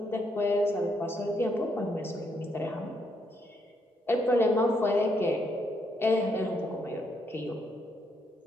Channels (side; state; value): both; normal; correlation 0.75